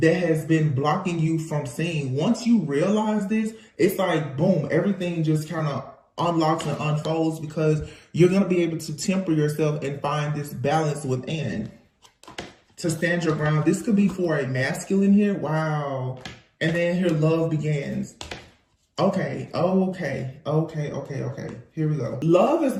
has been blocking you from seeing. Once you realize this, it's like, boom, everything just kind of unlocks and unfolds, because you're going to be able to temper yourself and find this balance within to stand your ground. This could be for a masculine here. Wow. And then here, love begins. Okay. Here we go. Love is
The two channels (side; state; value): both; identical; correlation 1.00